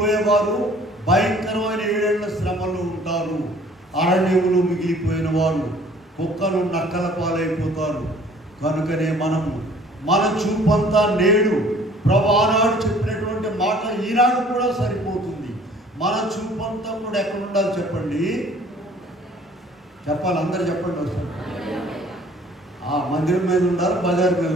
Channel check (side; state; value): both; normal; correlation 0.54